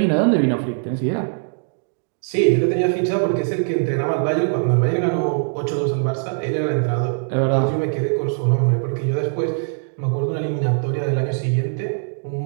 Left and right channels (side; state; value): left; silent; digital silence